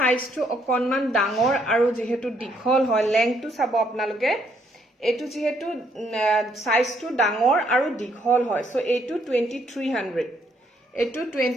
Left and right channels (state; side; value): normal; both; correlation 0.70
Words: অকনমান ডাঙৰ আৰু যেহেতু দীঘল হয় লেংথটো চাব আপোনালোকে এটো যেহেতু সাইজটো ডাঙৰ আৰু দীঘল হয় সো এটো 2300 এটো